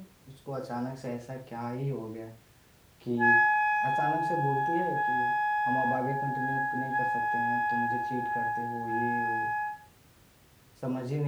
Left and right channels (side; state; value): both; identical; correlation 1.00